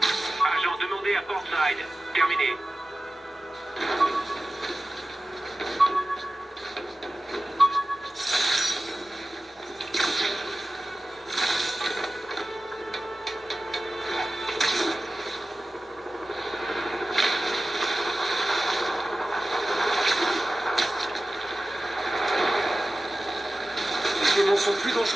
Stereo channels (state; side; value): normal; both; correlation 0.95